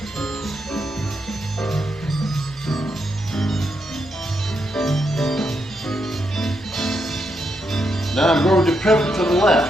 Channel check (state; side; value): normal; both; correlation 0.81